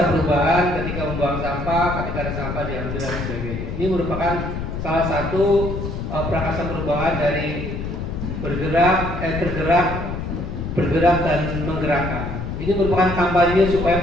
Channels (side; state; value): left; noise; rumble, 5 dB below the sound